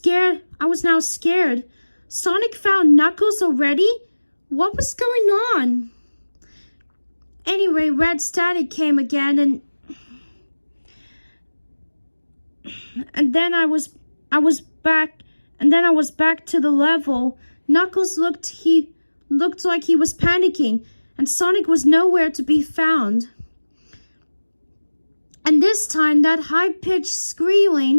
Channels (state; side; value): inverted; both; correlation -1.00